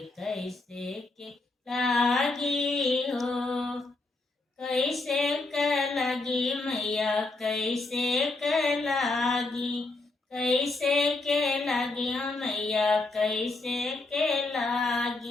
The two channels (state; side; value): quieter; right; 3.2 dB